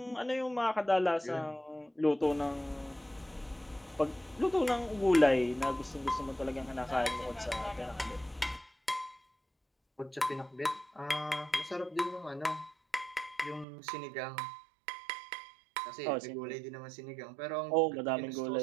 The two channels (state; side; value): drops out; left; at 13.7 s